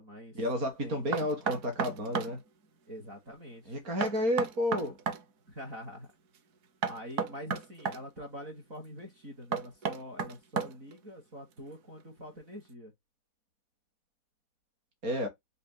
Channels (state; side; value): late; left; 4.1 ms